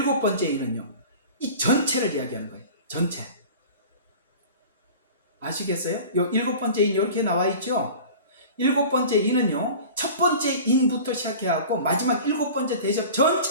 번째 인은요, 이 전체를 이야기하는 거예요. 전체. 아시겠어요? 요 일곱 번째 인 이렇게 나와 있죠? 일곱 번째 인은요, 첫 번째 인부터 시작해갖고 마지막 일곱 번째 대접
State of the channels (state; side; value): inverted; both; correlation -0.39